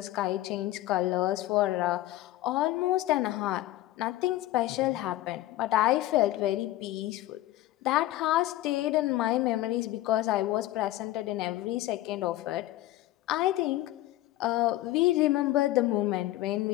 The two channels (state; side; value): quieter; right; 15.7 dB